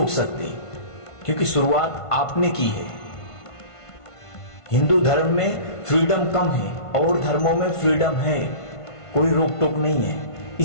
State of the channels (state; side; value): late; right; 1.5 ms